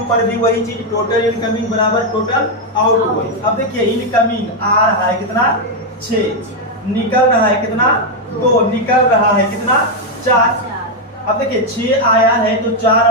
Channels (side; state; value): both; normal; correlation 0.02